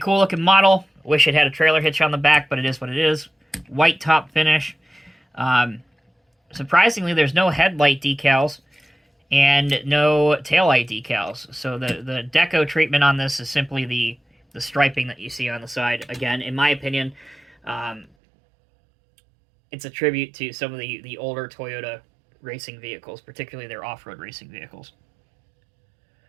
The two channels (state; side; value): drops out; left; at 18.1 s